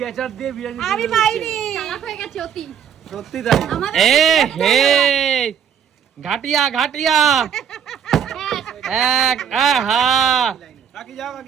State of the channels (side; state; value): left; quieter; 8.1 dB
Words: দিয়ে বিরিয়ানি আমি তৈরি পাইনি করছে। চালাক হয়ে গেছে অতি সত্যি তাই। এ হে ঘাটিয়া এক আহা কাকি যাও